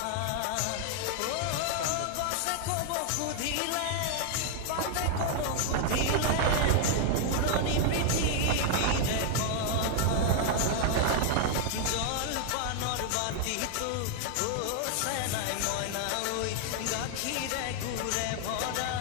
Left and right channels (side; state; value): both; different; correlation 0.00